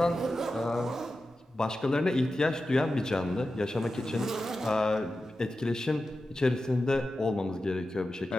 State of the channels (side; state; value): both; normal; correlation 0.92